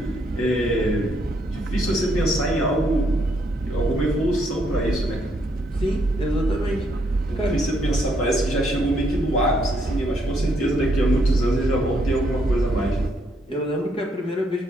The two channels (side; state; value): both; normal; correlation 0.73